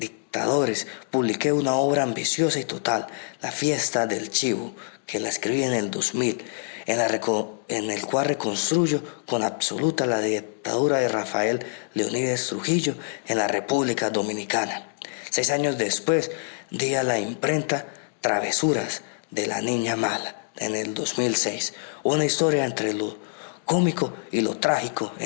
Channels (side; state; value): right; silent; digital silence